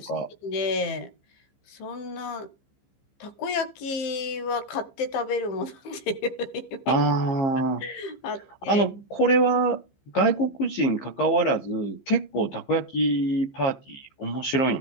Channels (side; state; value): right; late; 15 ms